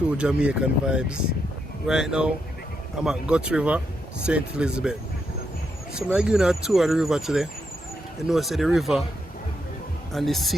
Jamaican vibes. Right now, I'm at Gut River, St. Elizabeth. So I'm giving a tour of the river today. You know, say the river and the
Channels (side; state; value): both; normal; correlation 0.81